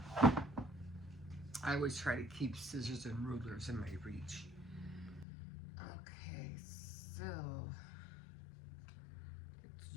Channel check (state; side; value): drops out; right; at 5.2 s